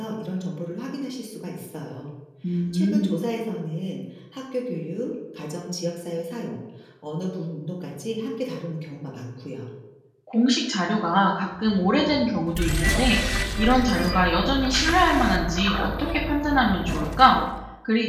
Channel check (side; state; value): both; identical; correlation 1.00